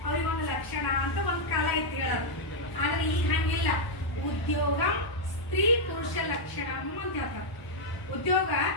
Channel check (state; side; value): late; right; 1.0 ms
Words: ಅವ್ರಿಗೊಂದು ಲಕ್ಷಣ ಅಂತ ಒಂದು ಕಾಲ ಐತಿ ಹೇಳೋದು. ಆದ್ರೆ ಈಗ ಹಂಗಿಲ್ಲ. ಉದ್ಯೋಗ ಸ್ತ್ರೀ ಪುರುಷ ಲಕ್ಷಣ ಅಂತ ಹೇಳ್ತಾರೆ. ಉದ್ಯೋಗ